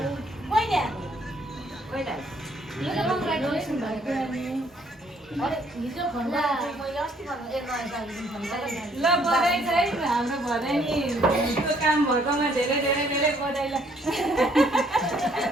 ल बधाई चाहिँ हाम्रो भनाइ नि त्यो काम भएकोमा धेरै धेरै धेरै बधाई। ल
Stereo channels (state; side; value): normal; both; correlation 0.65